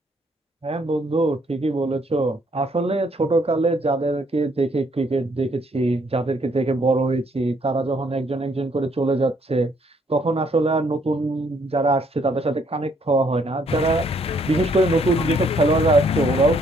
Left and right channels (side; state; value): both; normal; correlation 0.68